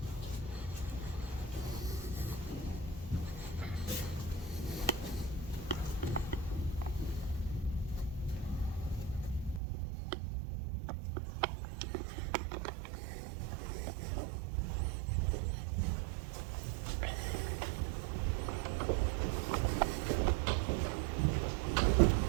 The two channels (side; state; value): left; drops out; at 9.6 s